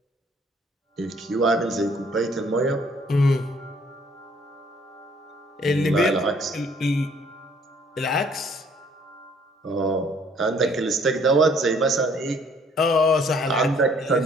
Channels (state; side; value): normal; both; correlation 0.61